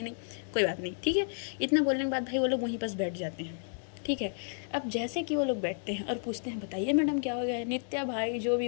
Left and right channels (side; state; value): right; silent; digital silence